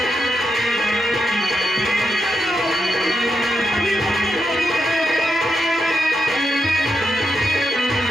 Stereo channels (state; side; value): normal; both; correlation 0.83